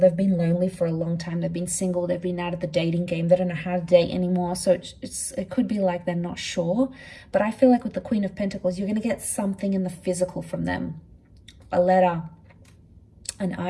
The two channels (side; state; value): both; identical; correlation 1.00